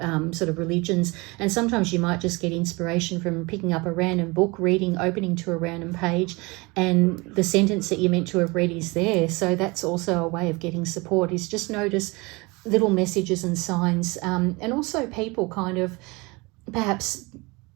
sort of religions. And sometimes you might just get inspiration from picking up a random book, opening to a random page, and the sentence that you're meant to have read is there. So that's also a way of getting support, is just notice little messages and signs, and also people kind of perhaps,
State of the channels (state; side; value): quieter; left; 25.5 dB